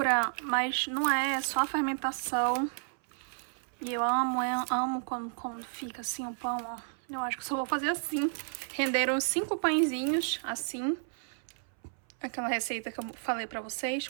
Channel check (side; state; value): left; silent; 57 dB below the other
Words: mas não é só a fermentação. E eu amo quando fica assim o pão, ó. Eu acho que só vou fazer assim. Renderam 5 pãezinhos, assim. Aquela receita que eu falei pra vocês,